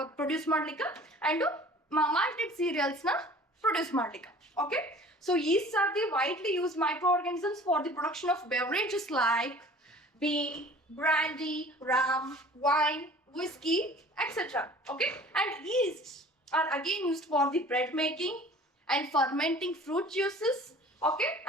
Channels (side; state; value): both; normal; correlation 0.47